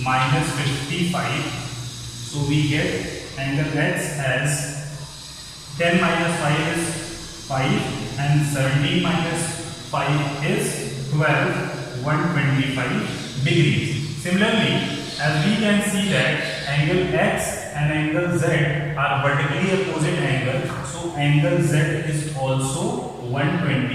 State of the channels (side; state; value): both; identical; correlation 1.00